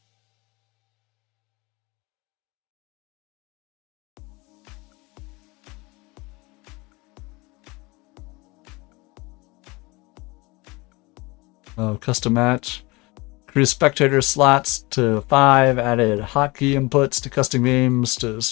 Oh, custom match. Increased spectator slots to 5. Added hotkey inputs to custom games to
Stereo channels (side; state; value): right; quieter; 24.5 dB